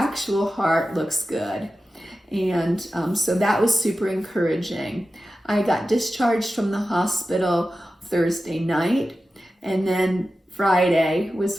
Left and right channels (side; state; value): both; normal; correlation 0.93